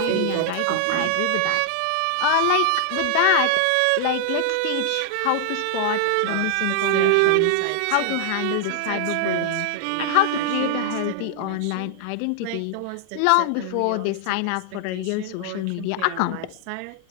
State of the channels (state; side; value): different; both; correlation 0.00